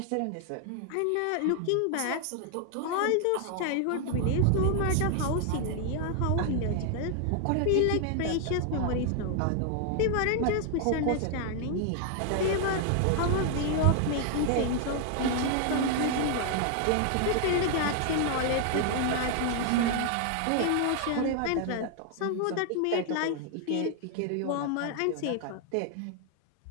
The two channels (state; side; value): different; both; correlation 0.00